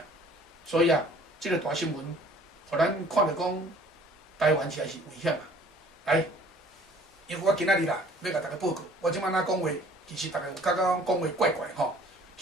所以啊，即个大新闻，互咱看着讲。台湾实在是危险啊！来，因为我今仔日啦，要甲大家报告。我即摆哪讲话，其实大家有感觉讲话怪怪吼。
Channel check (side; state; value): both; normal; correlation 0.54